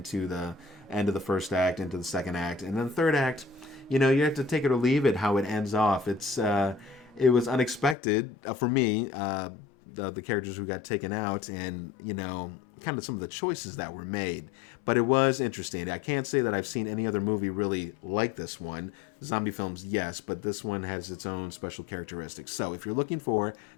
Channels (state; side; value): drops out; right; at 8.0 s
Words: the end of the first act, into the second act. And then the third act, you have to take it or leave it how it ends off. It was unexpected for me, the characters who got taken out and, kind of some of the choices that were made. But it was interesting. I can't say that I've seen any other movie really like this one. Zombie films, yes, but this one has its own special characteristics. So if you're looking for